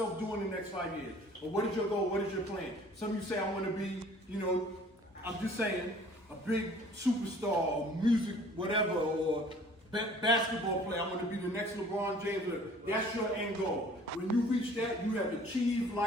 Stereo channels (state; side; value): normal; both; correlation 0.52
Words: doing in the next 5 years? Or what is your goal? What is your plan? Some of you say, I want to be, I'm just saying, a big superstar or music, whatever, or basketball player. I want to be the next LeBron James. That's your end goal. When you reach that, you have achieved